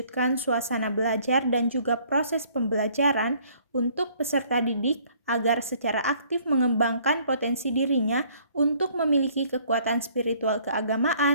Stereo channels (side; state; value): both; inverted; correlation -0.60